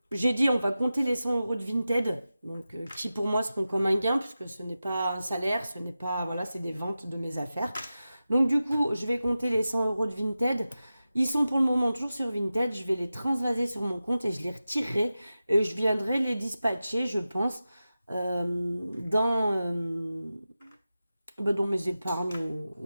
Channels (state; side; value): inverted; both; correlation -0.94